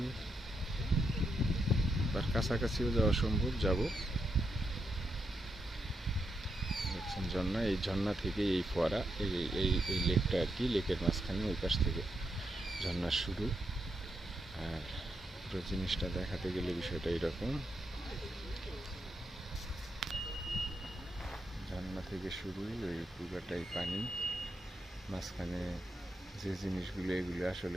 তার কাছাকাছিও যাওয়া সম্ভব, যাব। দেখছেন ঝর্ণা, এই ঝর্ণা থেকে এই ফোয়ারা, এই এই এই লেকটা আর কি, লেকের মাঝখানে ওই পাশ থেকে ঝর্ণার শুরু। আর পুরো জিনিসটা দেখাতে গেলে বিষয়টা এরকম, ঝর্ণা থেকে শুরু, ওই পুরোটাই পানি, মাঝখানে যে জিনিসগুলো, এগুলো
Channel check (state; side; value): normal; both; correlation 0.83